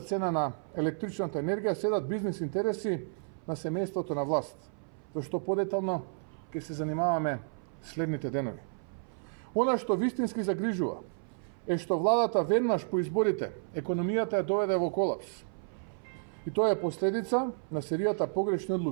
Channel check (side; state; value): left; silent; 56 dB below the other